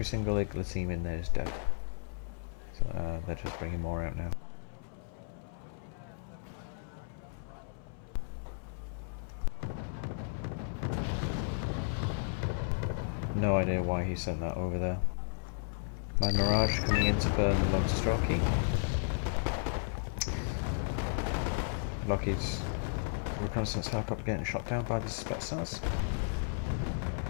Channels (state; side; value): silent; right; 55 dB below the other